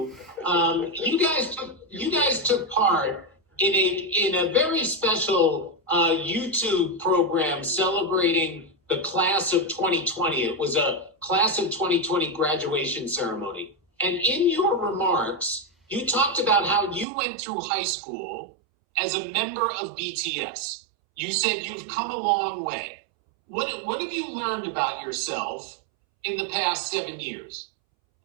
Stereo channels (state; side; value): drops out; left; at 17.1 s